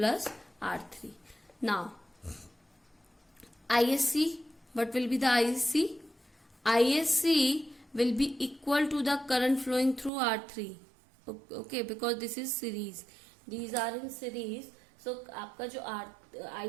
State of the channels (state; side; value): drops out; left; at 10.1 s